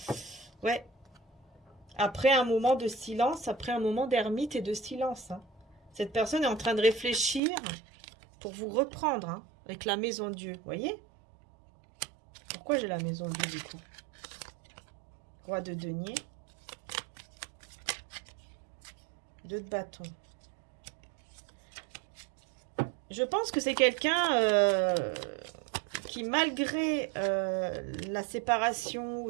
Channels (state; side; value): drops out; left; at 7.4 s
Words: Ouais. Après un moment de silence, après un moment d'ermite et de silence. Hein. Cette personne est en train de réfléchir pour vous reprendre hein, avec la maison Dieu. Vous voyez? Pourquoi j'ai la maison Dieu du coup? Roi de denier. 2 de bâton. Je pense que c'est quelqu'un qui, malgré la séparation